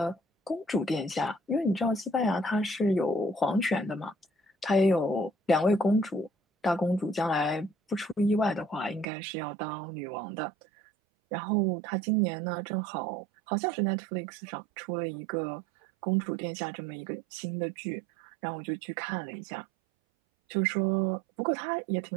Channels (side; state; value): left; drops out; at 9.1 s